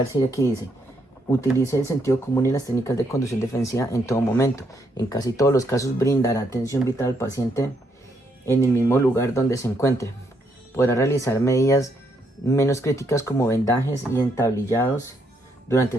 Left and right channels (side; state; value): both; normal; correlation 0.74